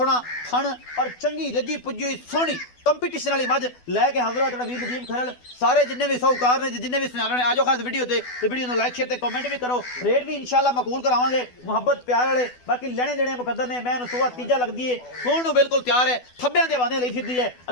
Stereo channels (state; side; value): late; right; 12 ms